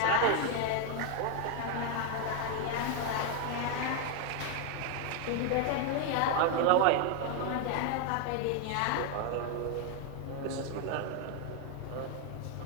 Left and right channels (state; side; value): different; both; correlation 0.01